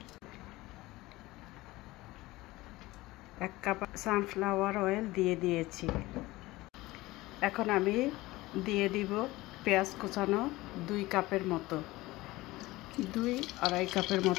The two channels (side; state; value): right; quieter; 19.3 dB